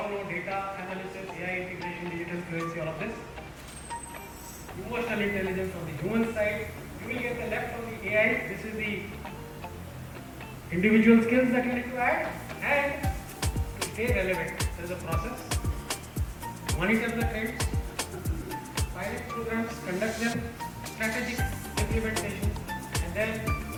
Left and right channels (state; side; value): identical; both; correlation 1.00